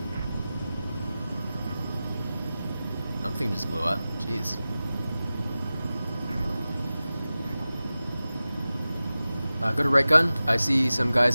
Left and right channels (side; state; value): both; inverted; correlation -0.96